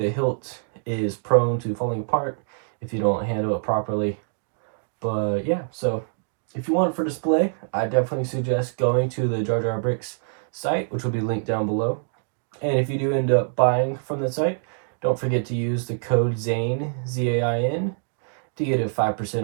hilt is prone to falling apart if you don't handle it properly. But yeah, so if you want it for display, I definitely suggest going to the JarJar Bricks site, which will be linked down below. And if you do end up buying from the site, don't forget to use the code ZAIN, Z-A-I-N, to get it 5%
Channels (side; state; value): left; silent; digital silence